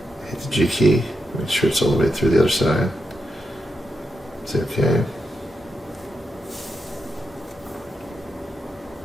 Hit the G key. Make sure it's all the way through the other side. Say okay.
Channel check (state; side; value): normal; both; correlation 0.86